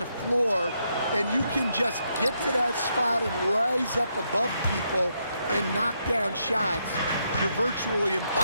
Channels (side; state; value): both; inverted; correlation -0.78